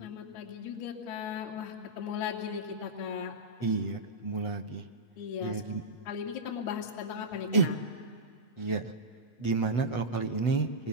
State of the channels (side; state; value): right; late; 8.1 ms